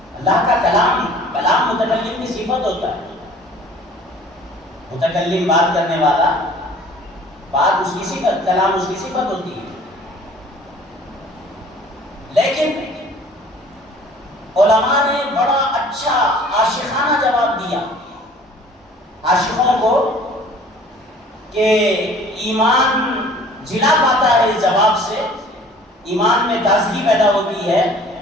اللہ کا کلام متکلم کی صفت ہوتا ہے، متکلم بات کرنے والا، بات اس کی صفت، کلام اس کی صفت ہوتی ہے۔ لیکن علماء نے بڑا اچھا عاشقانہ جواب دیا عاشقوں کو کہ ایمان جلا پاتا ہے اس جواب سے، ایمان میں تازگی پیدا ہوتی ہے۔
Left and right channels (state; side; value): normal; both; correlation 0.50